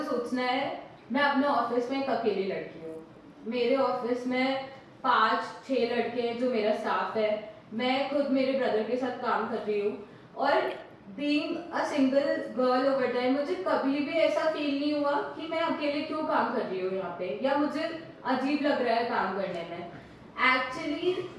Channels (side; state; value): both; identical; correlation 1.00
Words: सोचना है, मैं अपने ऑफिस में एक अकेली लड़की हूँ, मेरे ऑफिस में 5-6 लड़के हैं जो मेरा स्टाफ है, मैं खुद मेरे ब्रदर के साथ काम कर रही हूँ, और being a single girl over time मुझे कभी भी ऐसा फील नहीं हुआ कि मैं अकेले क्यों काम कर रही हूँ यहाँ पे, या मुझे अजीब लग रहा है काम करने में। Actually